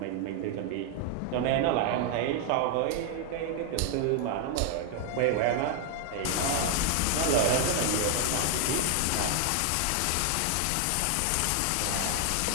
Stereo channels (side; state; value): both; different; correlation 0.00